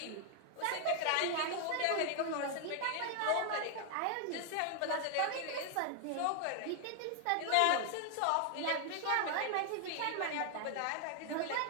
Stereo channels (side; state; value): both; different; correlation 0.00